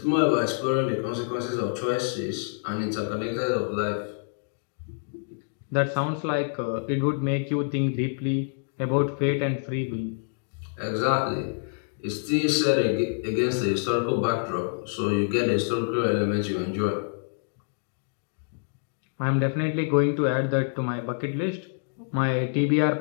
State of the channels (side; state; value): right; silent; digital silence